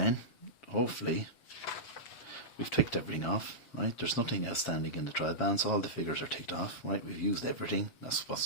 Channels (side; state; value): right; late; 7.4 ms